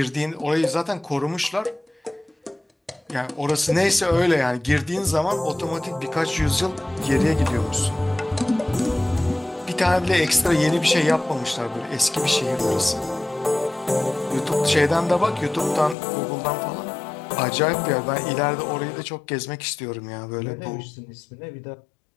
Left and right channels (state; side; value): drops out; right; at 16.0 s